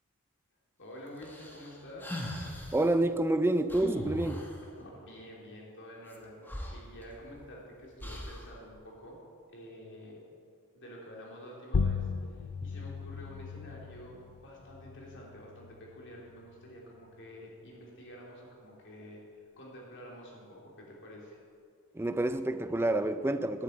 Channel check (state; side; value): normal; both; correlation 0.77